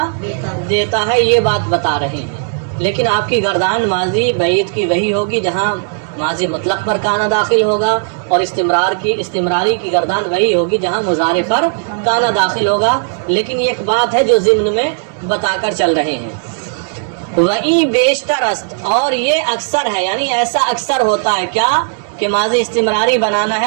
دیتا ہے، یہ بات بتا رہے ہیں۔ لیکن آپ کی گردان ماضی بعید کی وہی ہوگی جہاں ماضی مطلق پر کانا داخل ہوگا، اور استمراری کی گردان وہی ہوگی جہاں مضارع پر کانا داخل ہوگا۔ لیکن یہ ایک بات ہے جو ضمن میں بتا کر چل رہے ہیں۔ وہیں بیشتر است، اور یہ اکثر ہے، یعنی ایسا اکثر ہوتا ہے کیا کہ ماضی استمراری بنانا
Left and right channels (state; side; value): silent; left; 69 dB below the other